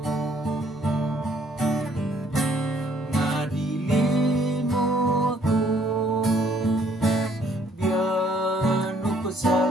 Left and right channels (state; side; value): normal; both; correlation 0.64